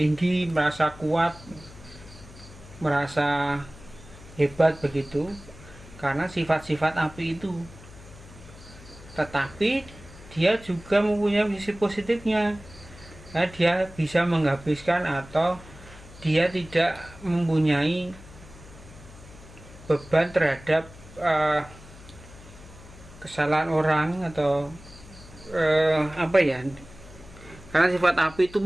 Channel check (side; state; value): left; noise; hum, 19 dB below the sound